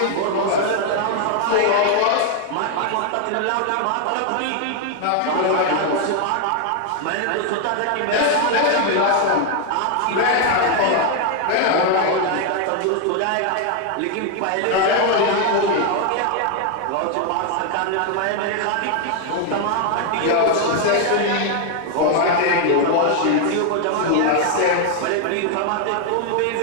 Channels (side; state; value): both; different; correlation 0.01